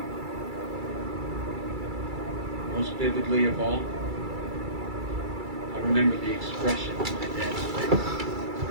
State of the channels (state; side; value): late; left; 2.3 ms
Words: Most vividly of all, I remember the expression on my dad's face.